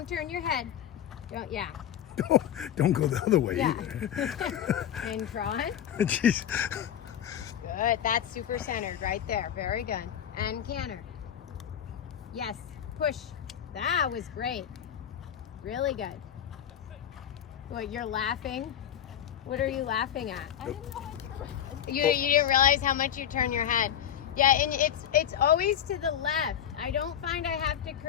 turn your head. Don't go the other way Yeah. either. And trot. Jeez. Good, that's super centered right there. Very good. And canter. Yes, push. That was great. Really good. What, you're laughing? What are you laughing at? I didn't know I turned. You didn't realize how much you turn your head. Yeah, and it's always to the left. I don't find I have to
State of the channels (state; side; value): quieter; right; 9.9 dB